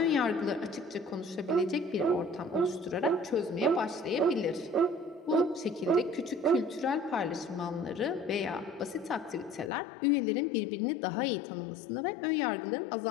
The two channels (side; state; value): right; drops out; at 9.7 s